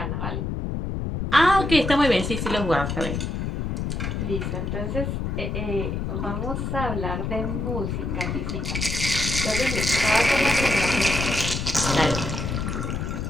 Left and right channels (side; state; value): left; noise; rumble, 2 dB below the sound